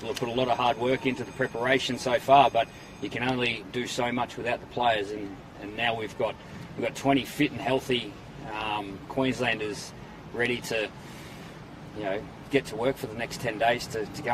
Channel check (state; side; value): identical; both; correlation 1.00